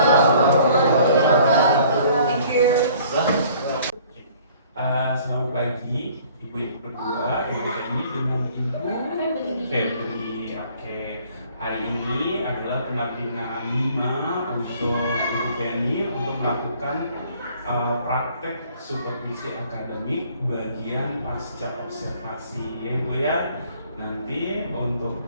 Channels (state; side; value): inverted; both; correlation -0.56